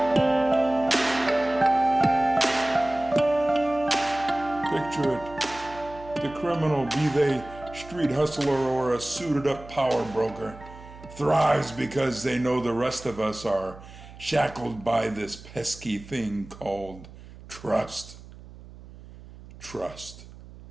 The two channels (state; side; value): noise; right; hum, 18 dB below the sound